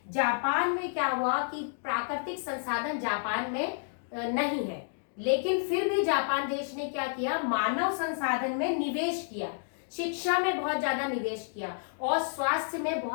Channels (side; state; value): right; silent; digital silence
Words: जापान में क्या हुआ कि प्राकृतिक संसाधन जापान में नहीं है, लेकिन फिर भी जापान देश ने क्या किया, मानव संसाधन में निवेश किया, शिक्षा में बहुत ज्यादा निवेश किया और स्वास्थ्य में